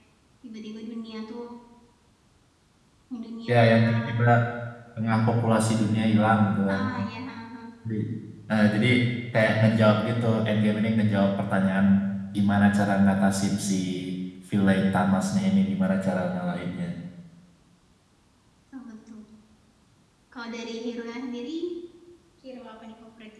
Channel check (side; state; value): both; identical; correlation 1.00